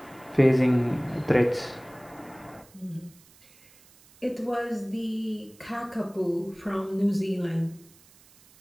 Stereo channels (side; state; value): right; noise; hiss, 27 dB below the sound